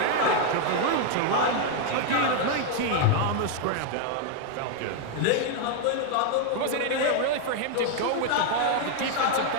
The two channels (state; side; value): different; both; correlation 0.00